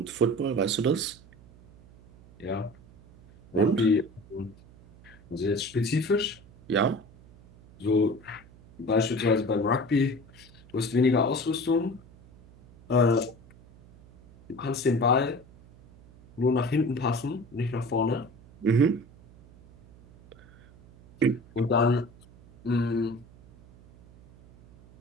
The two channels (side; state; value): right; noise; hum, 24 dB below the sound